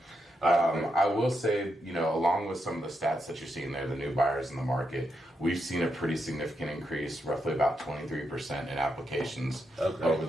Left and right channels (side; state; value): both; normal; correlation 0.83